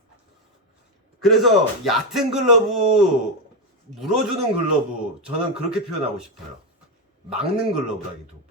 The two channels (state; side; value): normal; both; correlation 0.09